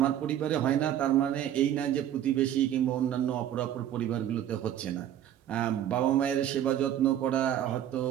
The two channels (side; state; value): left; quieter; 10.9 dB